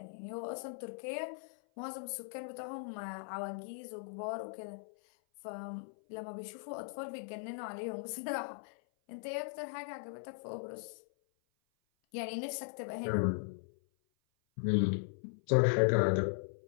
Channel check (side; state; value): right; silent; 52 dB below the other